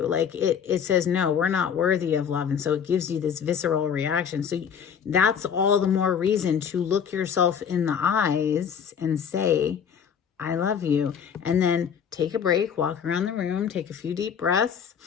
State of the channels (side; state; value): right; quieter; 7.6 dB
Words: Like it says, no, we're not worthy of love. And so it gives you this visceral reaction. So that's all the more reason to look yourself in the eyes and say, I love you. And then take a break, walk around the room, take a few deep breaths,